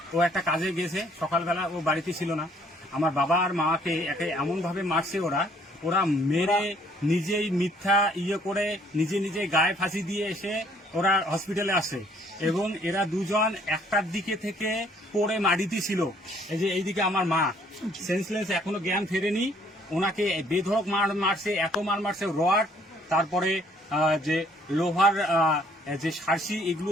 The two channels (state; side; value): normal; both; correlation 0.62